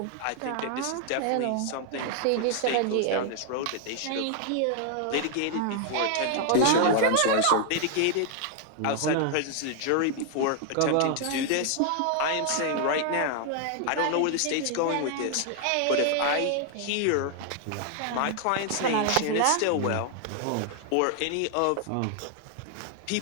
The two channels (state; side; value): different; both; correlation 0.00